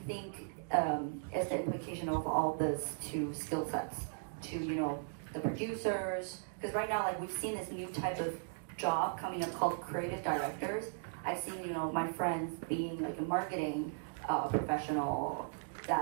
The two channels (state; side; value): silent; left; digital silence